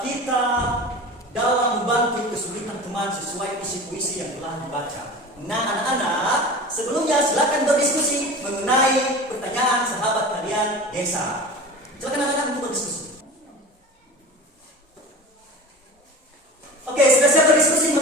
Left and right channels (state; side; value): normal; both; correlation 0.34